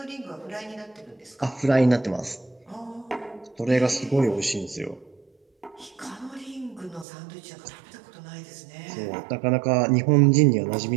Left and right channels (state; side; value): drops out; left; at 7.1 s